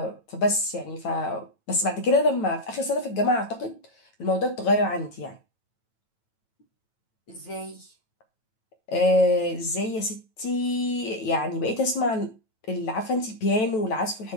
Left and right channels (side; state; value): right; late; 9.1 ms